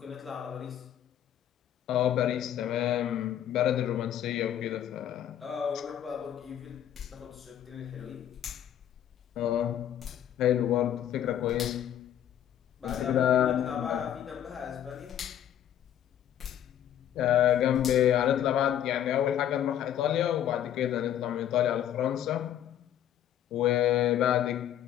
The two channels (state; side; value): quieter; right; 10.7 dB